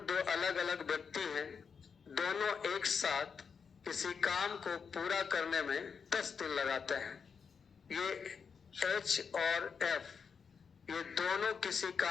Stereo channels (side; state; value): right; quieter; 6.1 dB